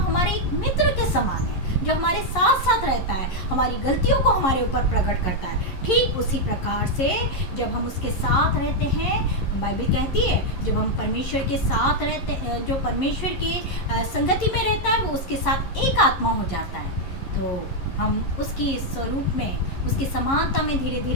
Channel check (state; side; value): late; right; 11 ms